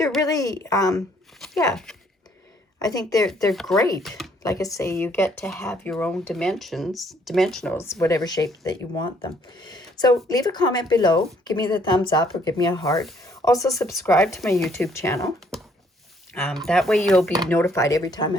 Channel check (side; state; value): both; normal; correlation 0.65